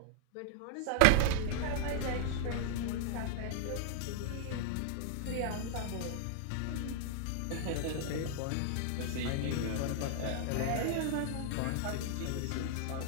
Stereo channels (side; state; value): both; different; correlation -0.01